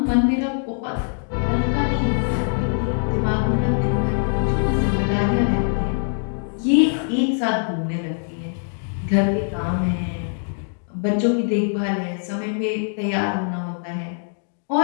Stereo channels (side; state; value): right; silent; digital silence